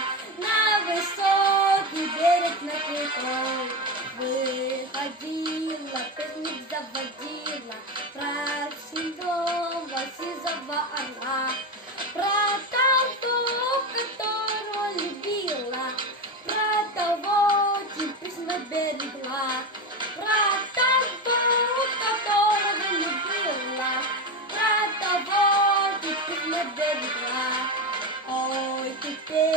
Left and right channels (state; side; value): normal; both; correlation 0.17